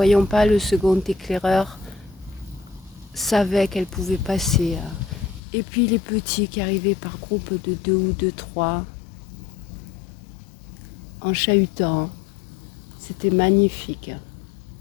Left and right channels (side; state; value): right; drops out; at 5.4 s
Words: pas le second éclaireur savaient qu'elles pouvaient passer. Et puis les petits qui arrivaient par groupe de 2 ou de 3 en chahutant. C'était magnifique.